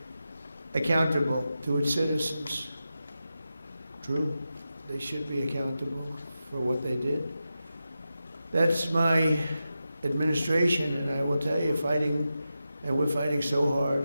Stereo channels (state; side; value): inverted; both; correlation -0.91